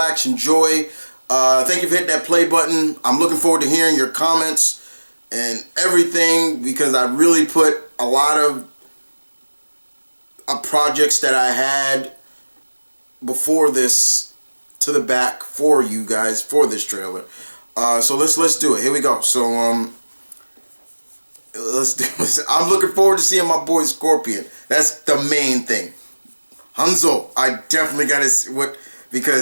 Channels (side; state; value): both; inverted; correlation -1.00